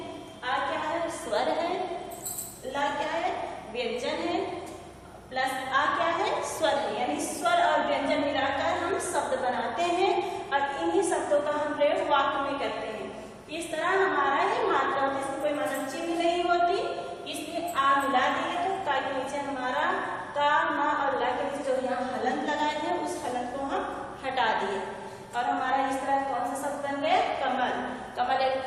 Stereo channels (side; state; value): both; identical; correlation 1.00